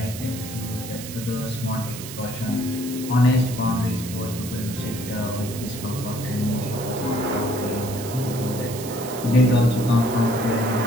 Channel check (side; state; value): right; noise; hiss, 11 dB below the sound